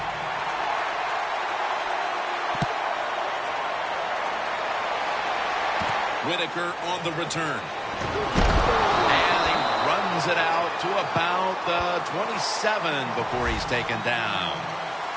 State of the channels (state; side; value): identical; both; correlation 1.00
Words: Whitaker on the return. And he runs it out to about the 27 before he's taken down.